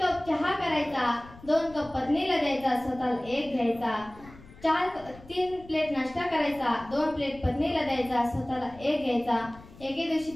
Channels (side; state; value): left; noise; rumble, 20 dB below the sound